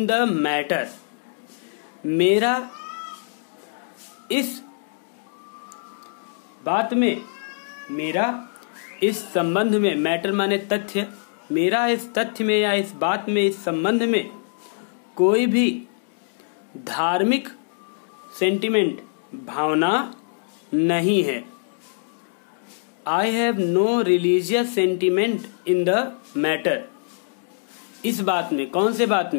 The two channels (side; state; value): right; silent; digital silence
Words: the matter. मेरा इस बात में, मेरा इस संबंध में, मैटर माने तथ्य, मेरा इस तथ्य में या इस बात में, इस संबंध में कोई भी धार्मिक सेंटिमेंट, भावना नहीं है। I have no religious sentiment in the matter. इस बात में, कौन से बात